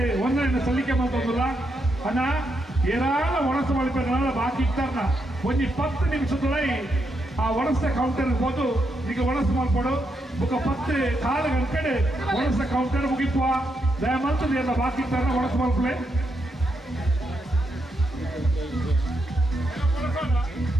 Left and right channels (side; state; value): both; normal; correlation 0.81